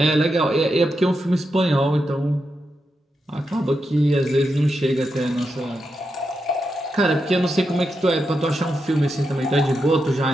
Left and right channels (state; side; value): normal; both; correlation 0.86